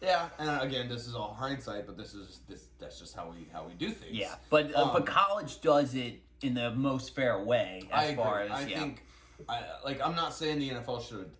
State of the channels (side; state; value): both; identical; correlation 1.00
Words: Yeah, and again, this is all hindsight, but that's just how we do things. Yeah, but college does it in the most fair way as far as, I think, I'm not saying the NFL should